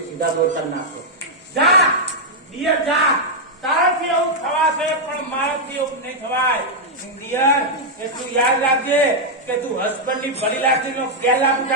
સીધા દોડતા નાખો. જા ડિયર જા. તારાથી એવું થવાશે પણ મારાથી એવું નહીં થવાય. ડિયર, એટલું યાદ રાખજે કે તું હસબન્ડ ની ભલી લાગણીનો ગેરલાભ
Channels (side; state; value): both; normal; correlation -0.03